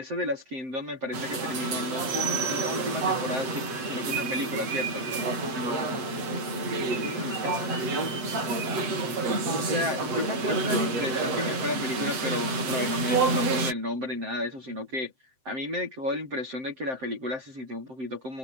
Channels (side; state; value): left; late; 7.7 ms